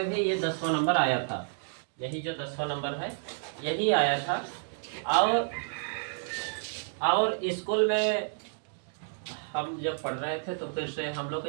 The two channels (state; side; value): silent; left; digital silence